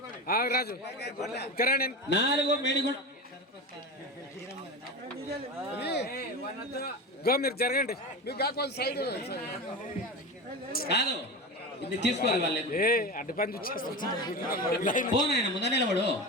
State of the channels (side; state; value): both; normal; correlation 0.25